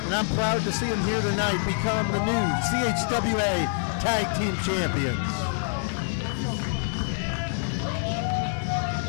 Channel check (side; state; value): right; silent; digital silence